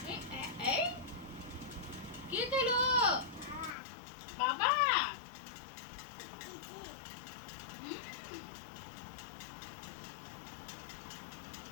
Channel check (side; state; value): right; drops out; at 3.8 s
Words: এই কে খেলো? বাবা